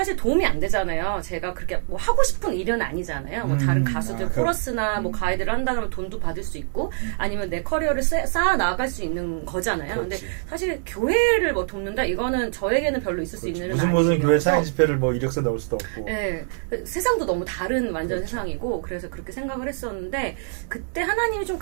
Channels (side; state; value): left; silent; 62 dB below the other